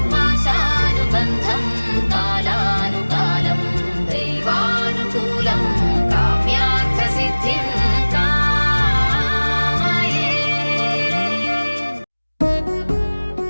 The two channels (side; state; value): both; inverted; correlation -1.00